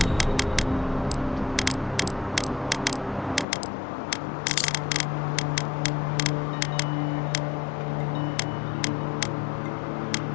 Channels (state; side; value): drops out; right; at 3.5 s